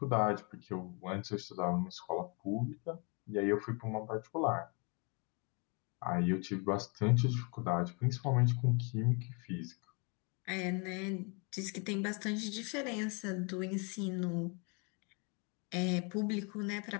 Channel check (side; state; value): right; quieter; 33.4 dB